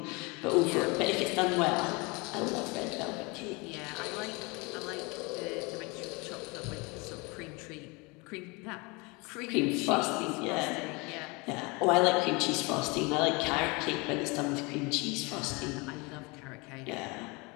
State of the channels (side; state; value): right; quieter; 27.4 dB